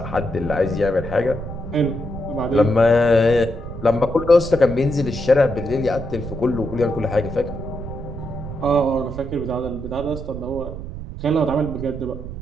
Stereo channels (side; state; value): right; noise; rumble, 9 dB below the sound